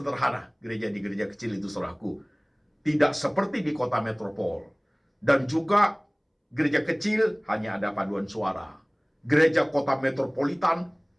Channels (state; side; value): identical; both; correlation 1.00